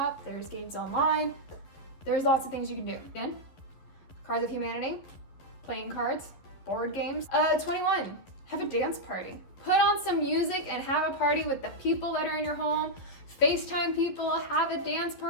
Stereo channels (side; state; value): right; late; 11 ms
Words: there's games online. There's lots of things you can do. Again, Cards of Humanity, playing cards, board games. 21, have a dance party. Put on some music and have a party with the people that are in your home. FaceTime people, have a dance